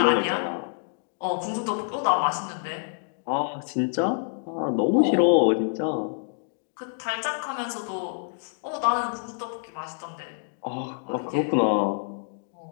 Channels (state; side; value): silent; right; digital silence